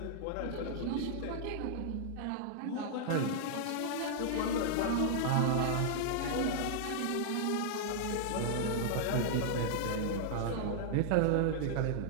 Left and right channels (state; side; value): different; both; correlation -0.01